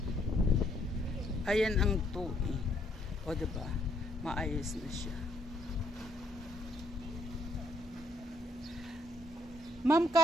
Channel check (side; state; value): both; normal; correlation 0.70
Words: Ayan ang tubi. O diba? Maayos na siya. Ma'am,